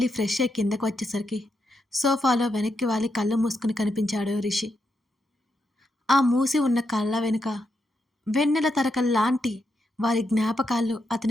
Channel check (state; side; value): normal; both; correlation 0.82